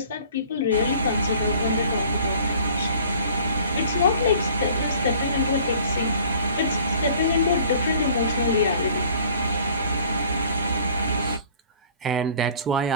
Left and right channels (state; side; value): inverted; both; correlation -0.51